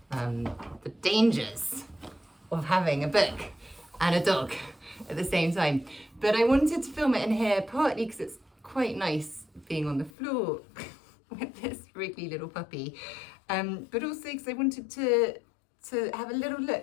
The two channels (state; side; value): drops out; right; at 10.1 s